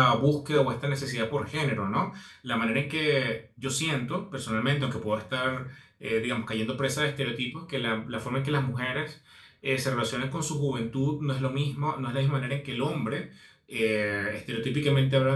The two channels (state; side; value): identical; both; correlation 1.00